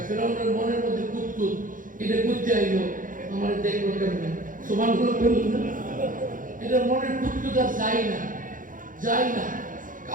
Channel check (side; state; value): left; late; 0.39 ms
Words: ফেরাউনের মনের মধ্যে কুতকুত, এটা করতে আইলো, আমার দেখলো কেমন সুবহানাল্লাহ বলল না, এটা মনের কুতকুত আর যায় না, যায় না,